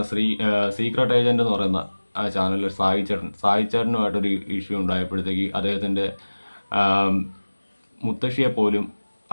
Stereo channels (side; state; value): both; inverted; correlation -1.00